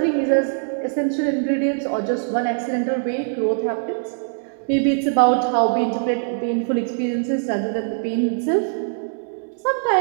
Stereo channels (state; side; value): silent; left; 64 dB below the other